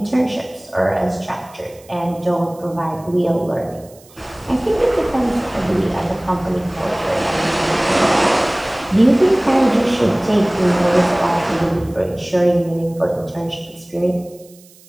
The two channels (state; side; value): noise; right; hiss, 26 dB below the sound